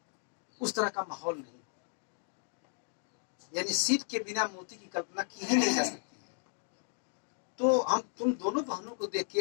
उस तरह का माहौल नहीं, यानी सीट के बिना मोती की कल्पना की ही नहीं जा सकती। तो हम तुम दोनों बहनों को देख के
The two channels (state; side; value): silent; right; 55 dB below the other